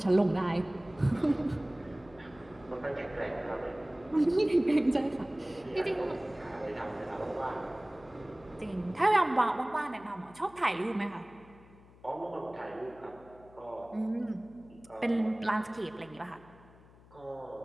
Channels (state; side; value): noise; left; hum, 24 dB below the sound